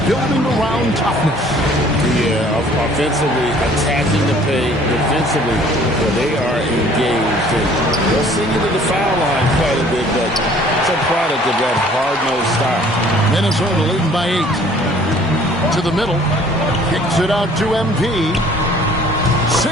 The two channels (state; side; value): normal; both; correlation 0.55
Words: building around toughness. Yeah, offensively, attacking the paint, defensively, well, they are engaged. And they'll send you to the foul line quite a bit, but it's a product of that hard-nosed style. Minnesota leading by 8. To the middle. Kicks it out to MP.